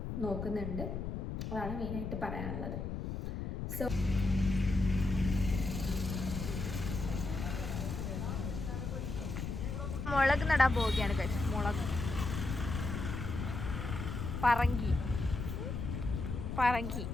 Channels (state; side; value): noise; left; rumble, 4 dB below the sound